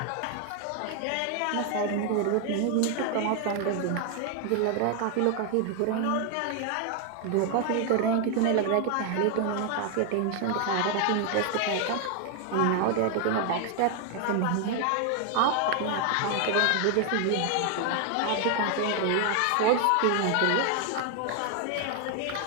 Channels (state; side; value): different; both; correlation 0.00